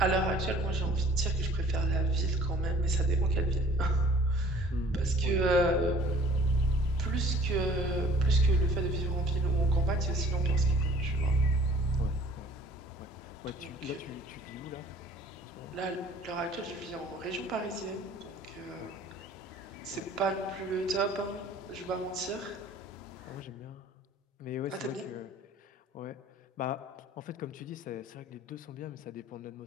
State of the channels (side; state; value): both; normal; correlation 0.52